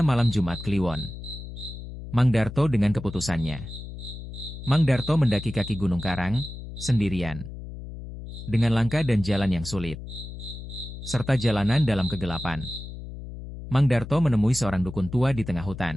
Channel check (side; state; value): left; noise; hum, 11 dB below the sound